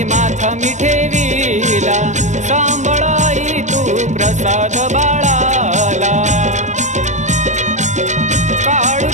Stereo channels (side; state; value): left; late; 0.34 ms